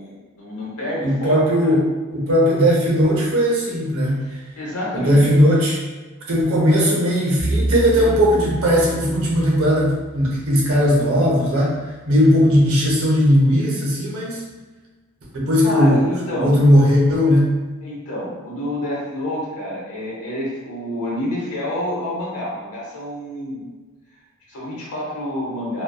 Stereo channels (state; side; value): normal; both; correlation 0.62